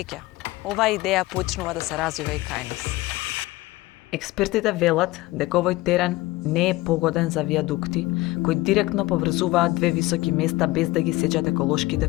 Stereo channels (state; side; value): quieter; right; 19.5 dB